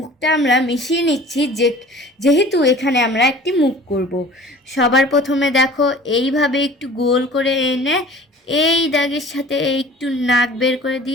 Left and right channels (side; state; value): both; normal; correlation 0.45